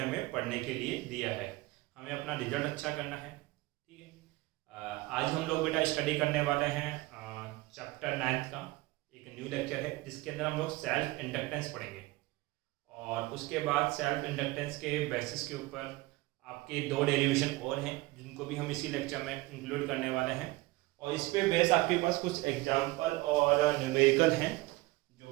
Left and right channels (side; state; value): left; quieter; 20.7 dB